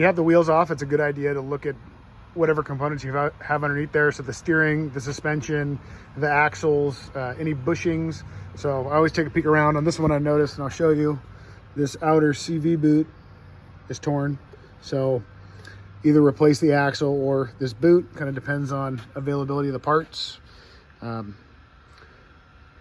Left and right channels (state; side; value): identical; both; correlation 1.00